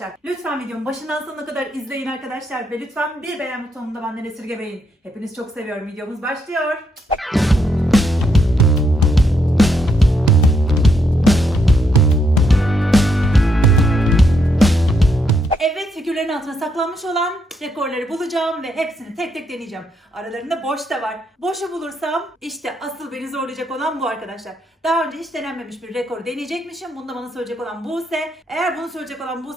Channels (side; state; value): both; normal; correlation 0.76